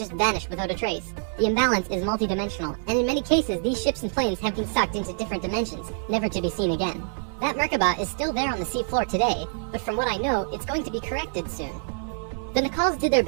vanished without a trace. The imbalance is multidimensional, and in many cases these ships and planes have been sucked into different dimensions, never to be seen again. That Merkaba is still there on the seafloor today, but from what I know, it's going to be corrected soon. The Nicals did their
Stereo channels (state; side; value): silent; left; 60 dB below the other